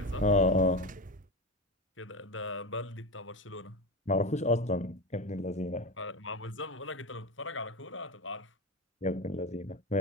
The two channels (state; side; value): normal; both; correlation 0.21